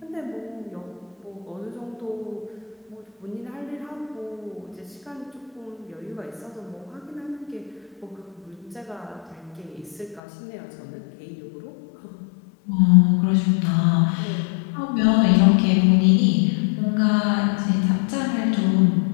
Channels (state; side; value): drops out; right; at 10.2 s